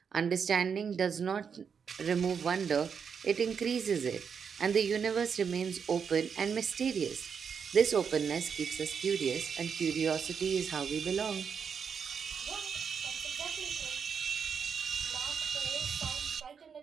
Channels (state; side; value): quieter; left; 6.6 dB